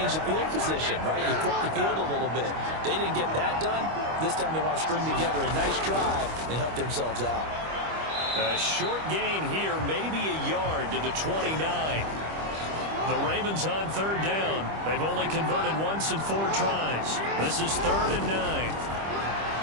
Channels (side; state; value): left; late; 25 ms